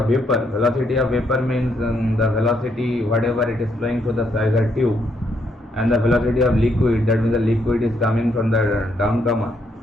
vapor. Velocity of vapor means the velocity whatever it is flowing through the riser tube, and the velocity of liquid, that means the liquid is coming from the downcomer.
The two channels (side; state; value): both; normal; correlation 0.74